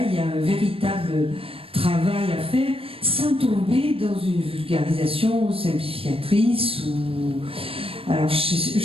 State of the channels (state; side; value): late; left; 0.27 ms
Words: il y a un véritable travail à faire, sans tomber dans une vulgarisation simplificatrice ou... Alors, je ne